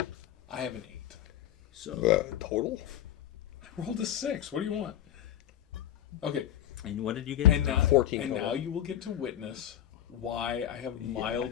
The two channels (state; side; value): quieter; right; 11.5 dB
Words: I have an 8. So. Total? I rolled a 6. What do you want? Okay. And what did you get? And now, 14 and total. now you will get to witness why I have